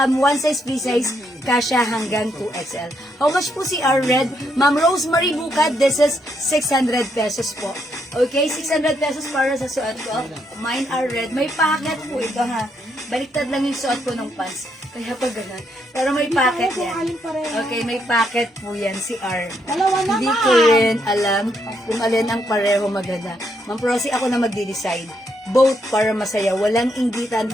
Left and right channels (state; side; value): normal; both; correlation 0.77